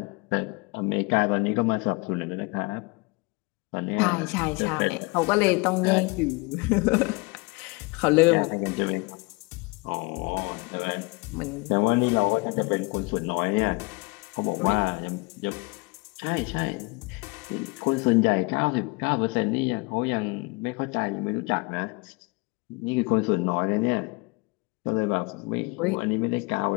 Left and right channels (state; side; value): quieter; right; 27.5 dB